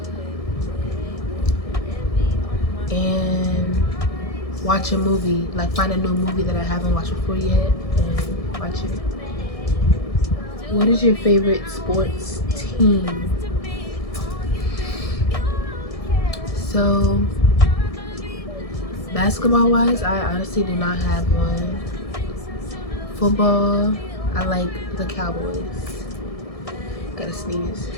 And watch a movie. Like, find a new movie that I haven't watched before yet and watch it. What is your favorite sports team? So, basketball wise, I honestly do not have one. Football, I like the Cowboys. Gotta sneeze.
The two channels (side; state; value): right; late; 1.6 ms